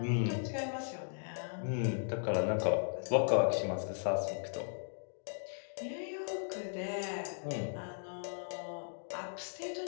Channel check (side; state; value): right; silent; digital silence